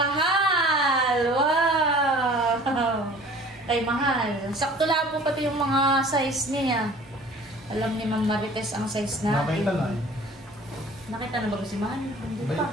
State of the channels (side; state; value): both; normal; correlation 0.48